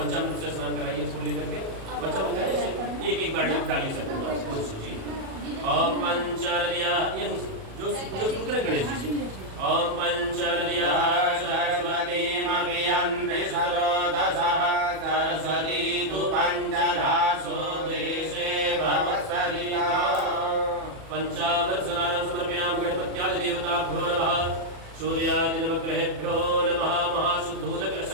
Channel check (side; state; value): left; late; 37 ms